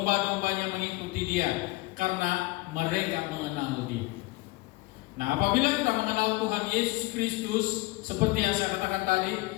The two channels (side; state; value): right; quieter; 21.5 dB